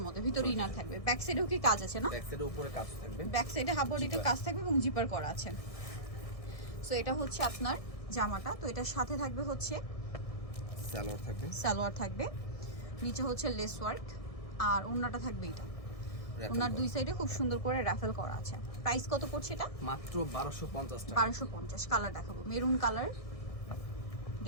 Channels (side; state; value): right; late; 1.6 ms